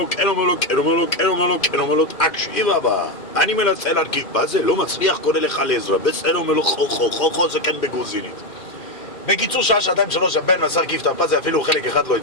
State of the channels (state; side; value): late; right; 2.4 ms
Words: כן, אומר לו, כן, אומר לו, כן, אומר לו, כן, אומר לו, תקשיב אבא, אני מנסה להרכיב פאזל, לא מצליח, קונה לך לעזרה. בסדר, אומר לו, חו, זה כן בגרוזינית. בקיצור, שעה, שעתיים, שלוש, הבן מנסה להרכיב את הפאזל, אפילו חלק אחד לא